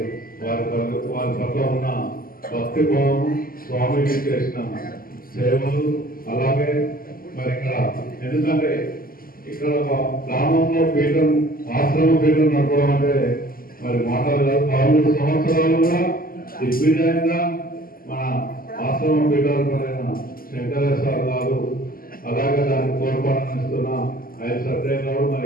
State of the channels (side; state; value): right; late; 0.42 ms